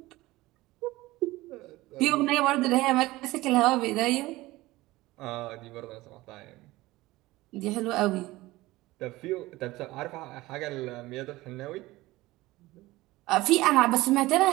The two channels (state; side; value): quieter; left; 18.9 dB